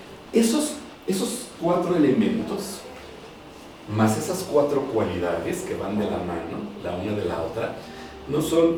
esos 4 elementos, más esas 4 cualidades que van de la mano, la una de la otra, no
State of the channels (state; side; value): identical; both; correlation 1.00